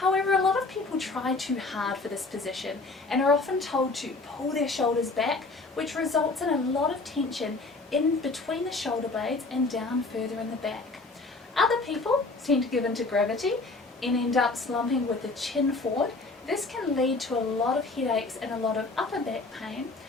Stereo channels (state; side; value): quieter; right; 3.5 dB